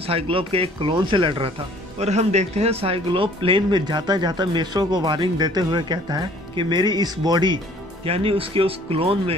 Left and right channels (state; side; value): normal; both; correlation 0.55